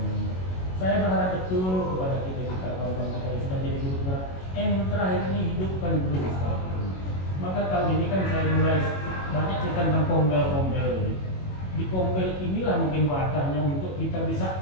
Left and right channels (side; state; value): right; late; 22 ms